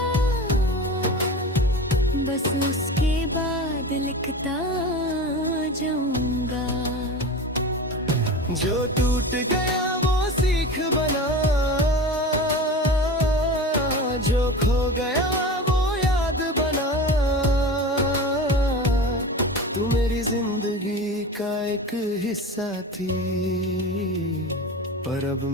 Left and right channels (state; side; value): normal; both; correlation 0.31